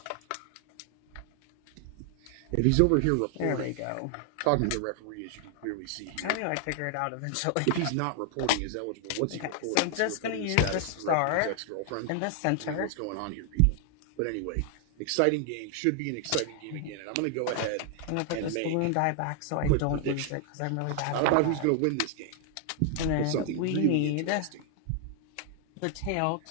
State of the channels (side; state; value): both; different; correlation 0.00